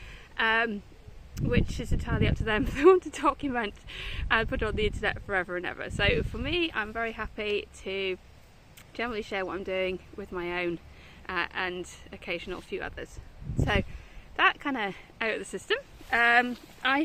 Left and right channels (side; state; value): both; identical; correlation 1.00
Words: which is entirely up to them if they want to document and put it on the internet forever and ever. So for me, I'm very happy to generally share what I'm doing with my own and occasional few others. So that kind of out of the system.